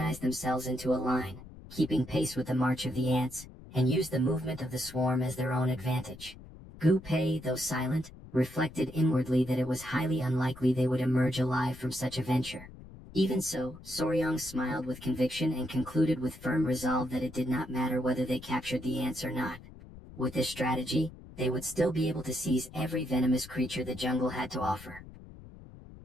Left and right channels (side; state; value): left; noise; rumble, 17 dB below the sound